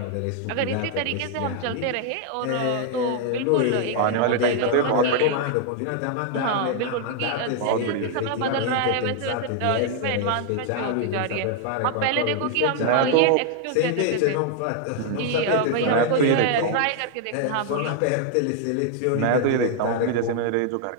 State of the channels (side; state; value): both; different; correlation 0.00